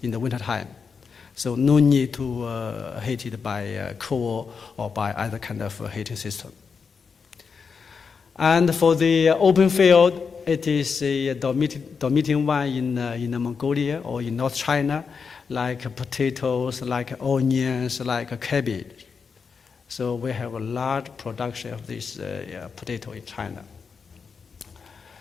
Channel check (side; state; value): right; quieter; 5.6 dB